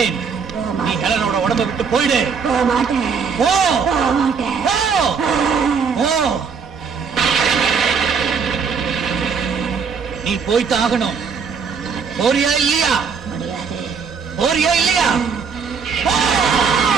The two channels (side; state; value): left; quieter; 5.9 dB